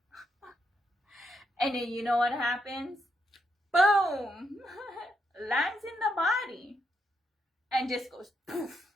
And then you know what happens? Boom! Lands in the body. And just goes poof,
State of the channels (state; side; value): normal; both; correlation 0.80